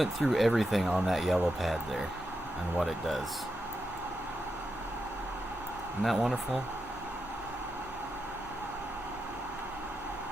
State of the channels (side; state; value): both; normal; correlation 0.86